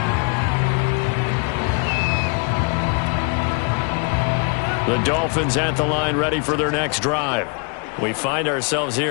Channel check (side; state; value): right; quieter; 36.5 dB